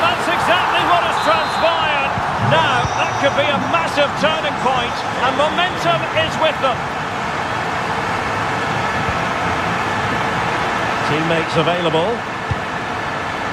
exactly what has transpired. Now, that could be a massive turning point, and momentum is with them. Teammates available.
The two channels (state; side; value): identical; both; correlation 1.00